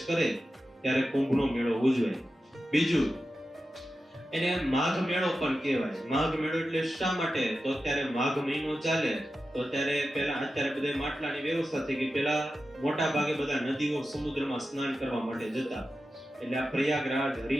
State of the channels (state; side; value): normal; both; correlation 0.92